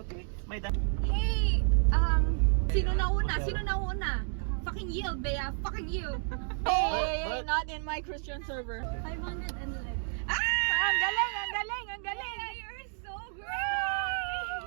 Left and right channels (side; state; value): left; silent; 57 dB below the other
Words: May da- Hey, sino nauna? Sino nauna? Fucking you, Bea. Fucking you. But- Not in my Christian server. 511. Ah! Ang galing, ang galing, ang galing. You're so great!